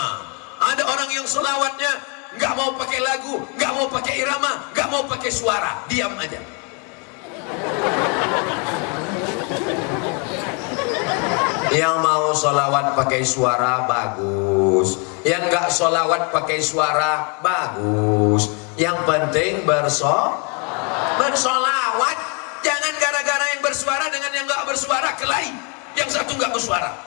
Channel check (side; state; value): right; quieter; 35.6 dB